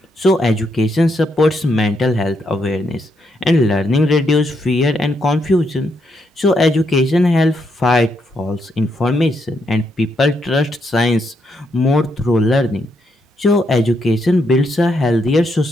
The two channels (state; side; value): normal; both; correlation 0.78